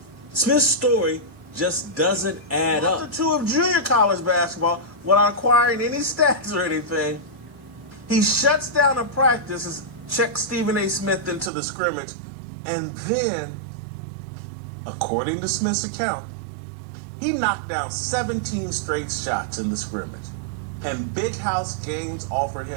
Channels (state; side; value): drops out; left; at 11.5 s